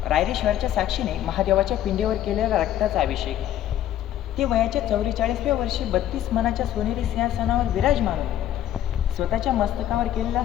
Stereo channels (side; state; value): right; quieter; 11.9 dB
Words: रायरेश्वरच्या साक्षीने महादेवाच्या पिंडीवर केलेला रक्ताचा अभिषेक. ते वयाच्या 44व्या वर्षी 32 मनाच्या सोनेरी सिंहासनावर विराजमान होऊन स्वतःच्या मस्तकावर केलेला